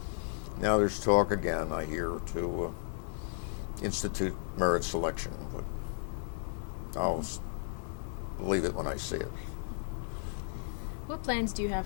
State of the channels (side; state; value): right; silent; digital silence